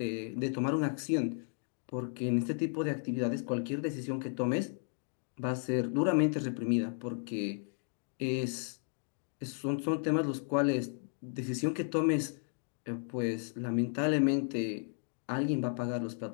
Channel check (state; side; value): silent; right; 55 dB below the other